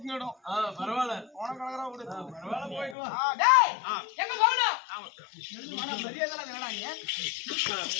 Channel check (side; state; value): right; drops out; at 3.0 s